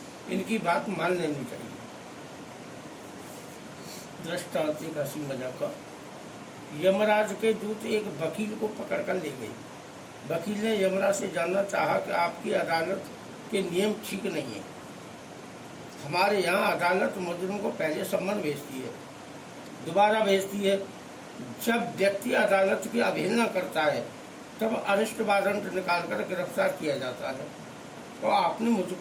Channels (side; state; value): both; identical; correlation 1.00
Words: इनकी बात मान लेनी चाहिए। दृष्टांत एक हंसी मजाक का। यमराज के दूत एक वकील को पकड़कर ले गए। वकील ने यमराज से जानना चाहा कि आपकी अदालत के नियम ठीक नहीं है। हमारे यहाँ अदालत मुजरिम को पहले सम्मन भेजती है, दोबारा भेजती है। जब व्यक्ति अदालत की अवहेलना करता है तब अरेस्ट वारंट निकालकर गिरफ्तार किया जाता है, और आपने